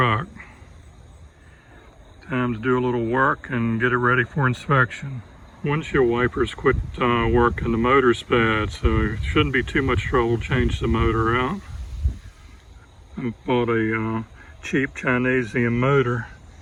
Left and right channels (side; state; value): both; identical; correlation 1.00